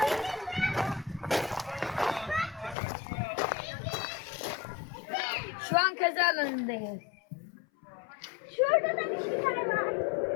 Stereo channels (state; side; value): drops out; right; at 2.8 s